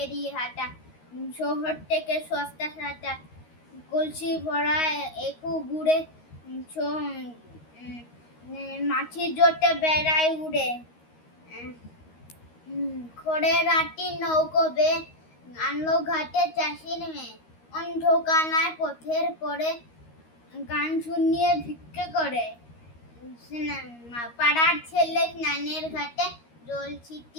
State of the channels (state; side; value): late; right; 13 ms